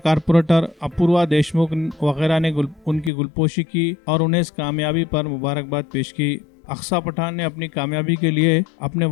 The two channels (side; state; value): right; drops out; at 3.1 s